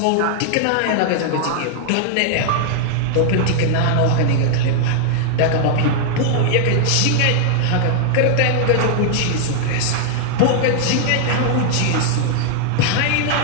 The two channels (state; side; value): different; both; correlation -0.01